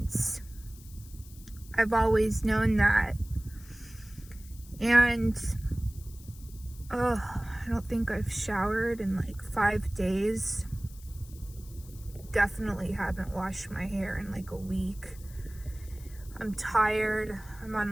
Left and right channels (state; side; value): noise; left; hiss, 21 dB below the sound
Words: I've always known that. And I don't think I've showered in like 5 days. Definitely haven't washed my hair in like a week. I'm tired. I'm